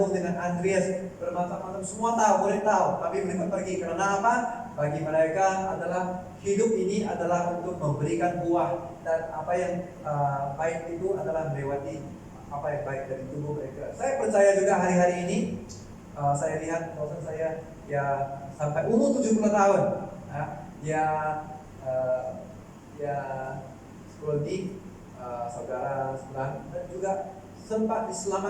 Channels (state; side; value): identical; both; correlation 1.00